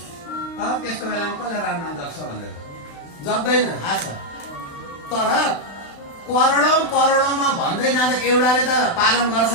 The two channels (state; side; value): late; right; 35 ms